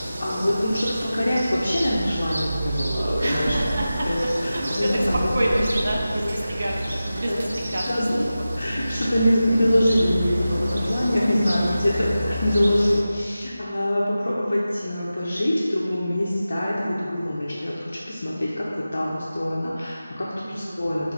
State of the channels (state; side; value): inverted; both; correlation -0.94